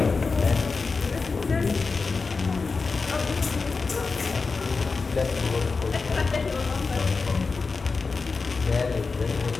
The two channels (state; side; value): quieter; right; 4.4 dB